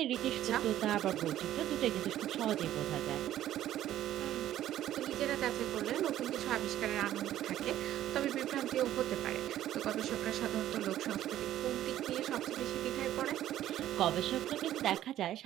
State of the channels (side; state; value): left; quieter; 12.6 dB